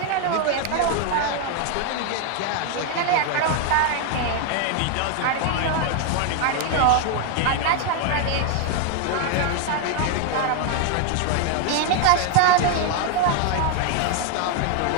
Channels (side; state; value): both; different; correlation 0.00